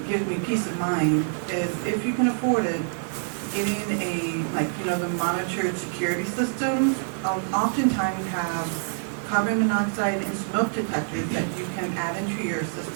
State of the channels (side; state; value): left; silent; digital silence